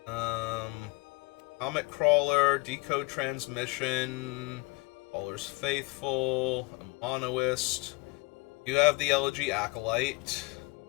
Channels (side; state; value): right; quieter; 26.0 dB